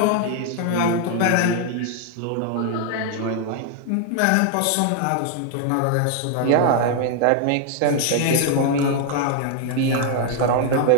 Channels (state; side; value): different; both; correlation 0.00